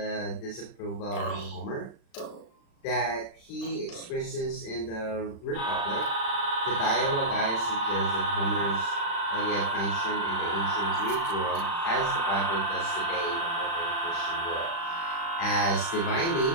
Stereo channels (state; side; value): late; right; 35 ms